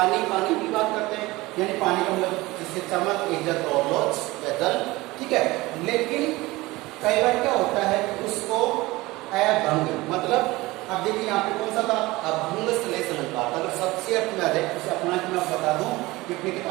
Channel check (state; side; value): quieter; left; 20.4 dB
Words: पानी की बात करते हैं, यानी पानी का मतलब जिससे चमक, इज्जत और लोच या जल, ठीक है? लेकिन कई बार क्या होता है कि उसको अभंग, मतलब अब देखिए यहाँ पे कौन सा था? अभंग श्लेष अलंकार। अगर सबसे अर्थ में आ जाए, उसे अपना कि मैं बता दूं कि अपनी